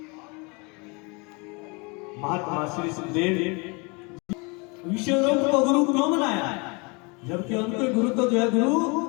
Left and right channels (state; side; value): quieter; right; 29.9 dB